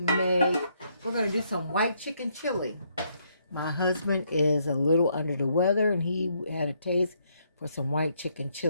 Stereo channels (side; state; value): both; inverted; correlation -0.73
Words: to do some white chicken chili. My husband is a little under the weather, and he had a taste for some white chicken